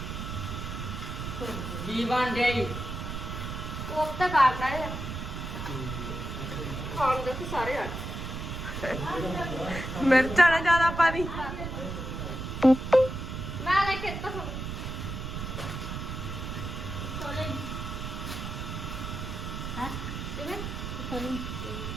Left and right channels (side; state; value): right; noise; rumble, 5 dB below the sound